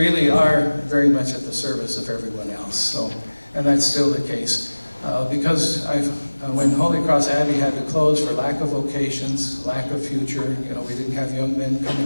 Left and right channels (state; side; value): inverted; both; correlation -1.00